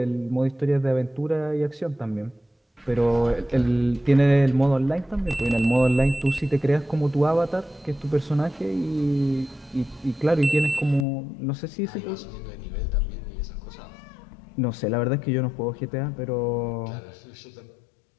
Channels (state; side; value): drops out; right; at 11.1 s